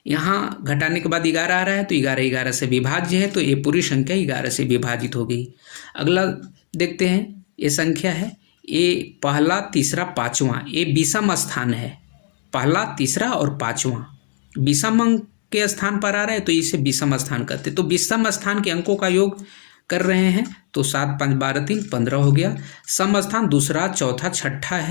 यहाँ घटाने के बाद 11 आ रहा है तो 11 11 से विभाज्य है तो ये पूरी संख्या 11 से विभाजित होगी। अगला देखते हैं, ये संख्या है ये पहला, तीसरा, 5वां, ये विषम स्थान है। पहला, तीसरा और 5वां विषम अंक के स्थान पर आ रहा है तो इसे विषम स्थान कहते हैं। तो विषम स्थान के अंकों का योग कर रहे हैं तो 7 5 12 3 15 हो गया। सम स्थान दूसरा, चौथा, छठा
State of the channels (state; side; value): silent; right; digital silence